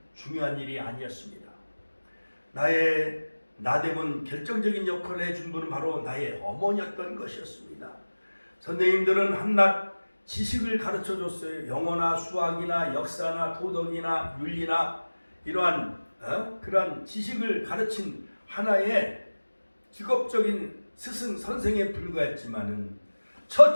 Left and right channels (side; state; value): both; inverted; correlation -1.00